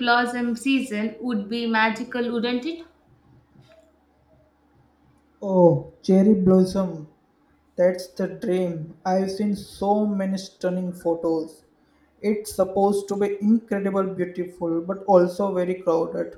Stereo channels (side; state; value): both; identical; correlation 1.00